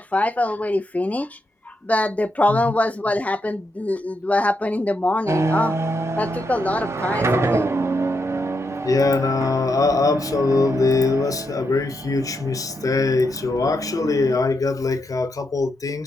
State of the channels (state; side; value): normal; both; correlation 0.82